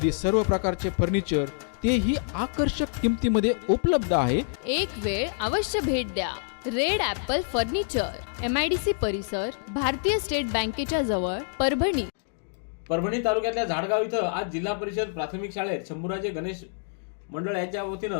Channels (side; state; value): right; silent; digital silence